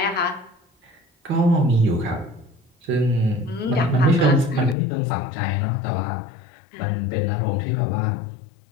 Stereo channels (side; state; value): right; drops out; at 4.8 s